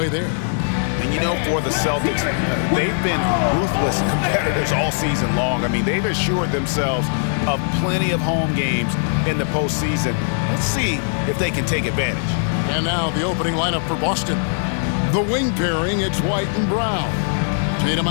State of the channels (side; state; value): right; silent; 64 dB below the other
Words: there. And, you know, for the Celtics, they've been ruthless competitors all season long. I mean, they've assured themselves of plenty of home games in the postseason. Let's see if they can take advantage. And now the opening lineup for Boston. The wing pairing, it's White and Brown. Tatum